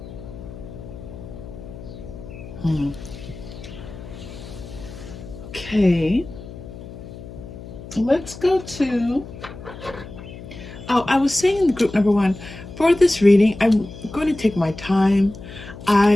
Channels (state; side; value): noise; left; hum, 14 dB below the sound